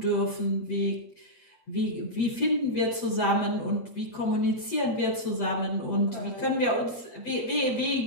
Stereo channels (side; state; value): right; late; 8.2 ms